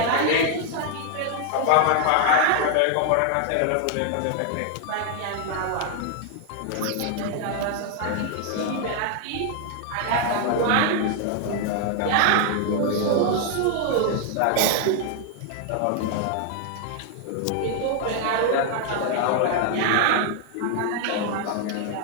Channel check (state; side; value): different; both; correlation 0.00